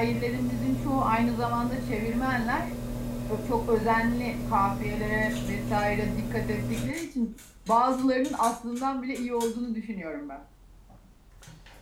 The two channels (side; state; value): both; identical; correlation 1.00